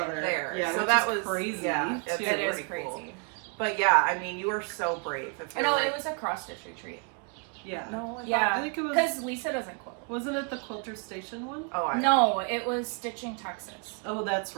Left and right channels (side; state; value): left; quieter; 37.5 dB